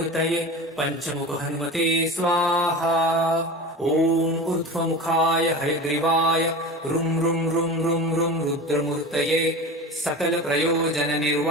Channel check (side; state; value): both; normal; correlation 0.30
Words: पञ्चमुख हनुमते स्वाहा ॐ ऊर्ध्वमुखाय हयग्रीवाय रुं रुं रुं रुं रुं रुद्रमूर्तये